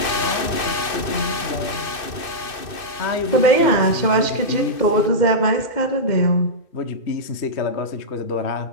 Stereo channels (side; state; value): right; late; 2.6 ms